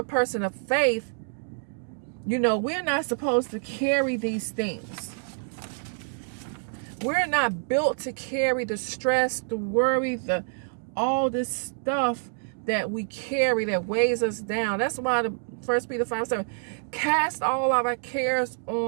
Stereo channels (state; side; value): silent; left; digital silence